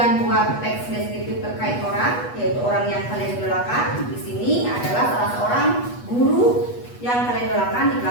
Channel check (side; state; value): right; late; 8.2 ms